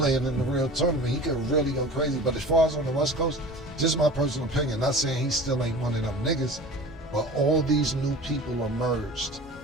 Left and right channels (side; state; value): both; normal; correlation 0.39